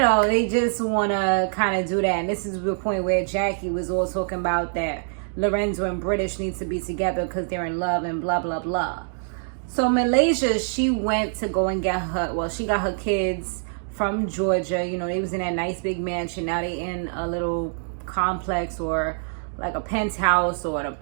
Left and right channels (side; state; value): left; silent; digital silence